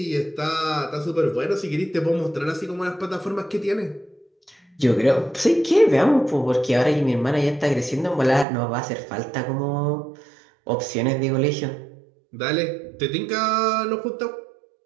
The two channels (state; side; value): drops out; left; at 8.5 s